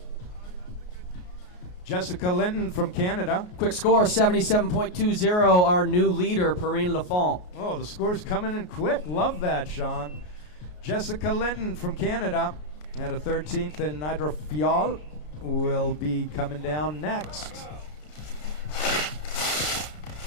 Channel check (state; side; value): late; right; 33 ms